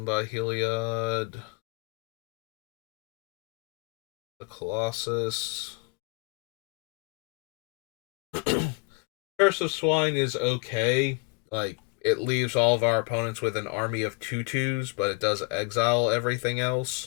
by Heliod, the Colossus. Curse of Swine is okay. Like, it leaves all of our opponents with an army of 2/2s, but it does exile everything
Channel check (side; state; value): right; quieter; 30.4 dB